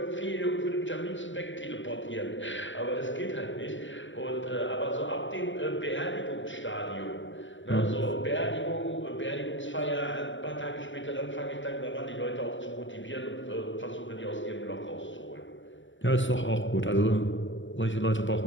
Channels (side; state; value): right; late; 0.55 ms